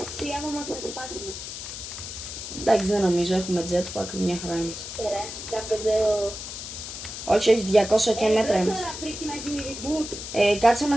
άμα μας θα σπάσουμε. Εντάξει, δεν νομίζω, έχουμε jetpack, μια χαρά είμαστε. Ωραία, κάπου Όχι, 200 και μέτρα είμαστε. Τώρα πρέπει να γίνει reboot. Κάτσε να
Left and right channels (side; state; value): left; noise; hiss, 9 dB below the sound